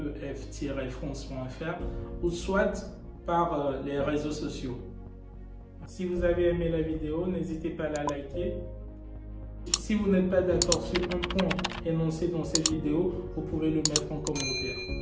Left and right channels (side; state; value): both; identical; correlation 1.00